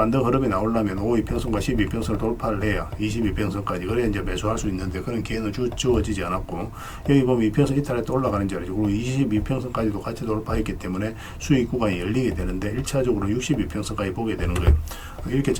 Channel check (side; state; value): both; identical; correlation 1.00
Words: 흐름이 나오려면 5이평선과 12평선을 돌파를 해야 22평선까지, 그래야 이제 매수할 수 있는데 그런 기회는 주어지지 않았고, 여기 보면 이평선 이탈할 때 올라가는 자리죠. 그리고 22평선까지도 같이 돌파했기 때문에 수익 구간이 열리게 되는데 1차적으로 62평선까지 보게 되는 거예요. 이렇게